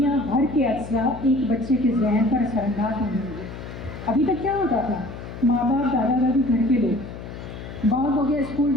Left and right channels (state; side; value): noise; left; hum, 11 dB below the sound